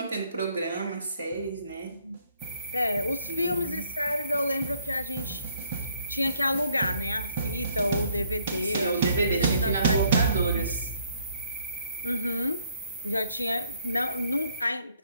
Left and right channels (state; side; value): inverted; both; correlation -0.66